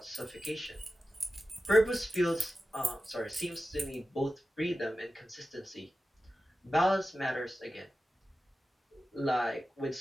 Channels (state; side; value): normal; both; correlation 0.93